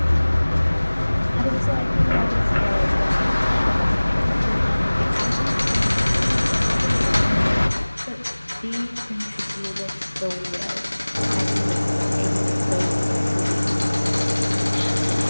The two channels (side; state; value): both; inverted; correlation -1.00